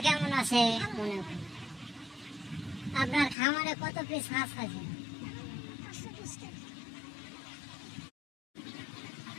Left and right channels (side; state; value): right; drops out; at 3.4 s